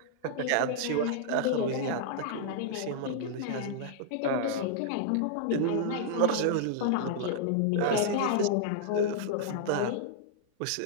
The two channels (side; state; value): both; different; correlation -0.01